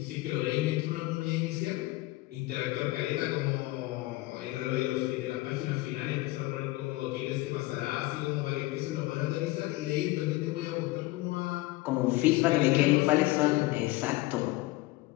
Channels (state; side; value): quieter; right; 19.6 dB